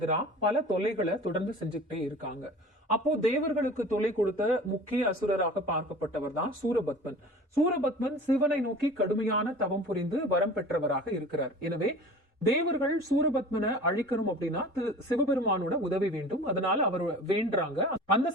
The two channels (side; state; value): both; normal; correlation 0.41